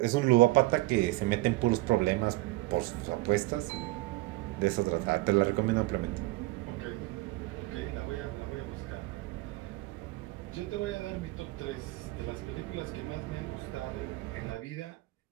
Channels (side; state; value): left; quieter; 20.4 dB